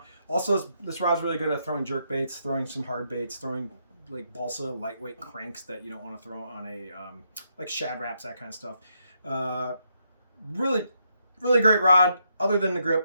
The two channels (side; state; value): both; inverted; correlation -0.78